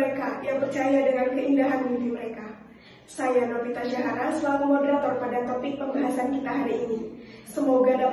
yang percaya dengan keindahan mimpi mereka. Saya Novita Syahara selaku moderator pada topik pembahasan kita hari ini. Semoga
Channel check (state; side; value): identical; both; correlation 1.00